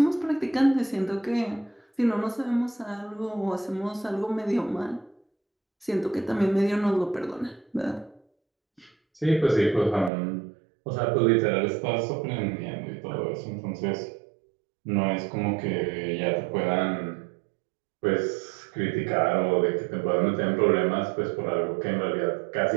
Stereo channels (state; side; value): drops out; left; at 10.1 s